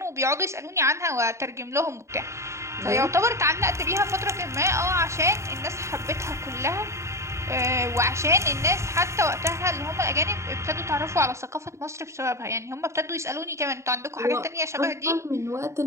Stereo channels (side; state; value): left; late; 0.14 ms